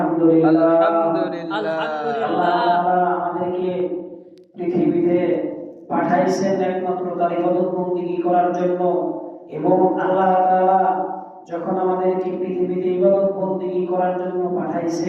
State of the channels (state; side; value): identical; both; correlation 1.00